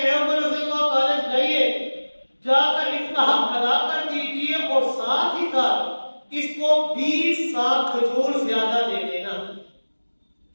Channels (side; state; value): both; inverted; correlation -1.00